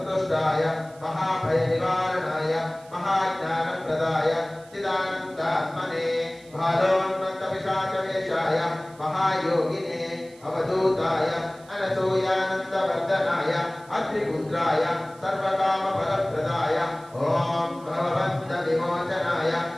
महाभयनिवारणाय महाज्ञानप्रदाय चिदानन्दात्मने भालोन्मत्तपिशाचवेषाय महायोगिने अवधूताय अनसूयानन्दवर्धनाय अत्रिपुत्राय सर्वकामफलप्रदाय ओम भवबन्धविमोचनाय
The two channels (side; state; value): right; noise; hiss, 26 dB below the sound